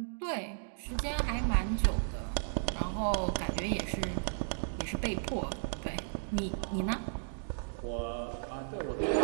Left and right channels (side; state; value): left; silent; digital silence